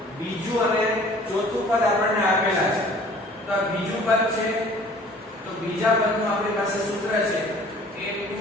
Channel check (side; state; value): both; normal; correlation 0.50